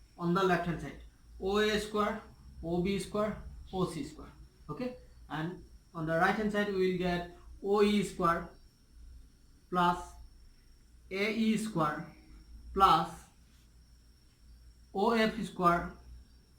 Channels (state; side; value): identical; both; correlation 1.00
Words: on the left hand side. OA square, OB square, OC square. Okay, and on the right hand side we will get OE square plus AE square plus OF square